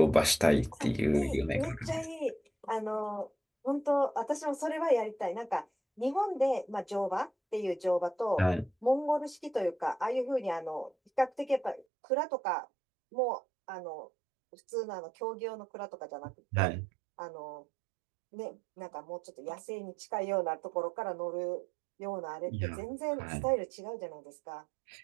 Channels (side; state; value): left; drops out; at 11.9 s